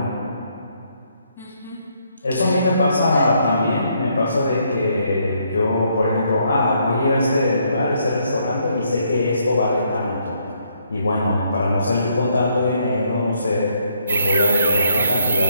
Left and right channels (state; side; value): inverted; both; correlation -0.72